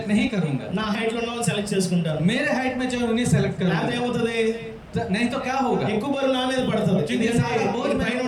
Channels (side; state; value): both; identical; correlation 1.00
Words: नहीं करूंगा। నా హైట్ లో ఉన్న వాళ్ళని సెలెక్ట్ చేసుకుంటాను. मेरे हाइट में जो है उन्हें सेलेक्ट లేకపోతే करूंगा, ఏమవుతుంది? नहीं तो क्या होगा, ఎక్కువ బరువు నా మీద పడుతుంది. क्योंकि सारा बोझ పైన